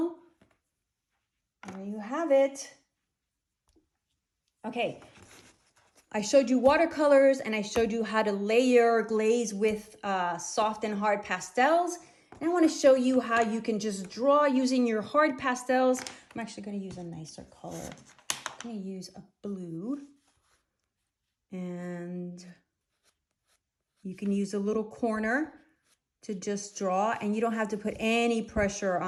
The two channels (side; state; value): both; identical; correlation 1.00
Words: There you have it. Okay, I showed you watercolors and I showed you how to layer glaze with soft and hard pastels. And I want to show you how you can just draw using your hard pastels. I'm actually going to use a nicer color. I'm going to use a blue. And you can use a little corner to just draw, and you don't have to put any pressure